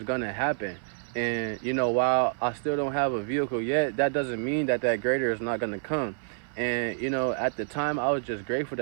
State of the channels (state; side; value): silent; left; 59 dB below the other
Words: gonna happen. And you know, while I still don't have a vehicle yet, that doesn't mean that that greater is not gonna come. And you know, at the time, I was just grateful